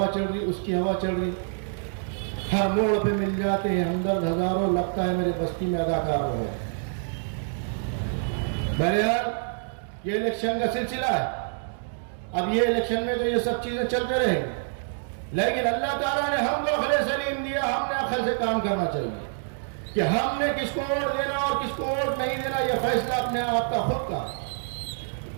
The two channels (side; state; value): left; silent; digital silence